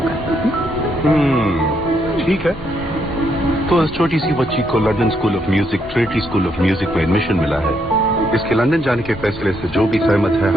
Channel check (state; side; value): normal; both; correlation 0.75